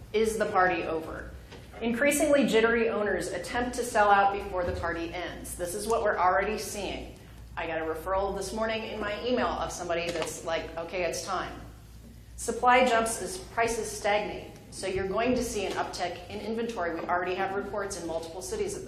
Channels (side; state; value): both; identical; correlation 1.00